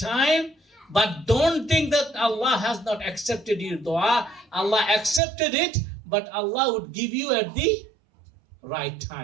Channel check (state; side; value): drops out; left; at 5.2 s